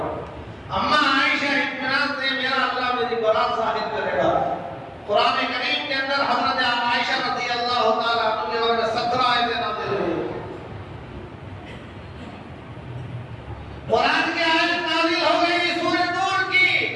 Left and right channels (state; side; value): identical; both; correlation 1.00